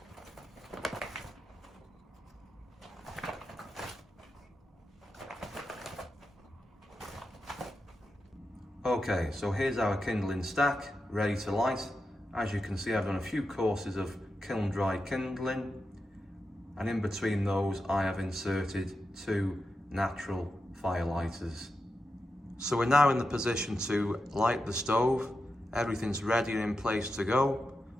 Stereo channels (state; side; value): normal; both; correlation 0.89